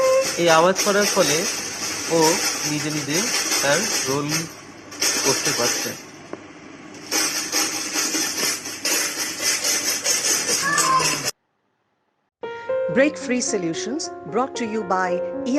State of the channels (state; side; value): identical; both; correlation 1.00